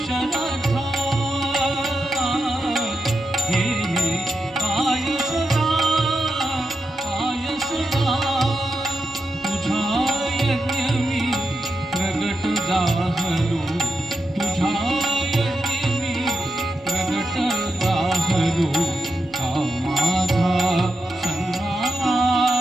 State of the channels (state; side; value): normal; both; correlation 0.87